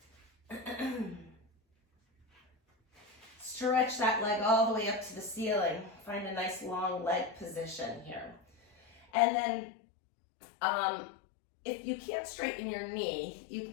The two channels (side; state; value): right; drops out; at 9.1 s